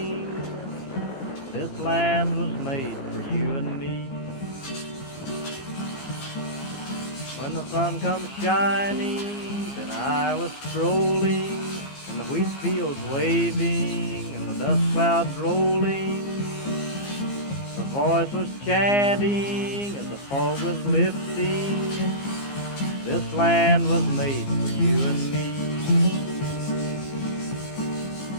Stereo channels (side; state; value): right; late; 15 ms